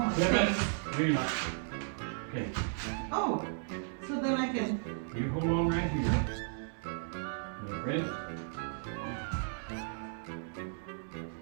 my Pivot. face. No, you're not. Okay. Oh, so then I can. You hold on right here. You ready?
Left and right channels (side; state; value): left; silent; 55 dB below the other